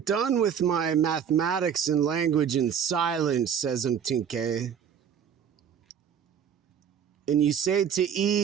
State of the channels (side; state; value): left; quieter; 8.1 dB